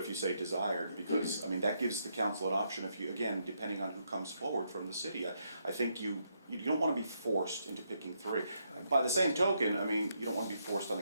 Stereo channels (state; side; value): inverted; both; correlation -0.77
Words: you say desired, because, that gives the council an option if you, again, depending on who comes forward from the city. I think you don't wanna be forced into picking 3. By the same token, I mean, you don't wanna be forced on